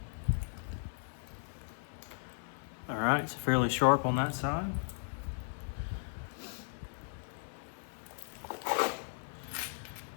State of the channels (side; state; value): right; silent; 53 dB below the other